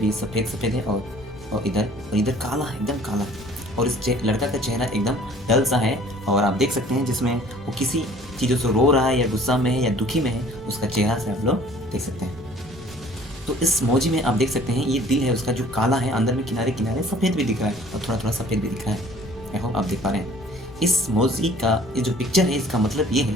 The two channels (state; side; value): normal; both; correlation 0.52